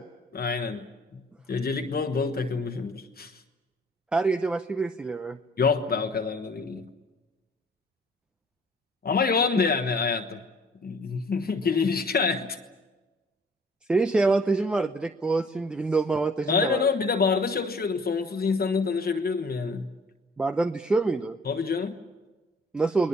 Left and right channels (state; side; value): normal; both; correlation 0.54